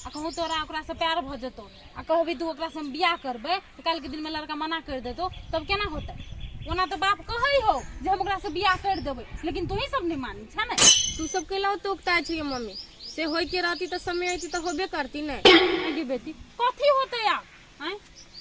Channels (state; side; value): identical; both; correlation 1.00